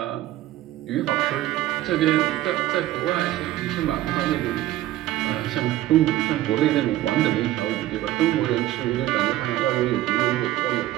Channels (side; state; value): left; quieter; 14.6 dB